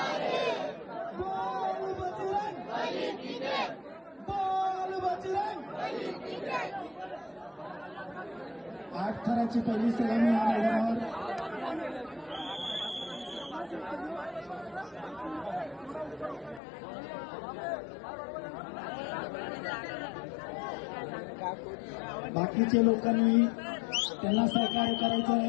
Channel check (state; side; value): drops out; right; at 16.6 s